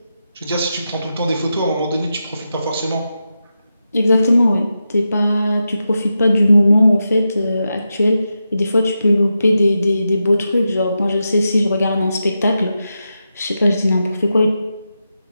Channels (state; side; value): inverted; both; correlation -0.89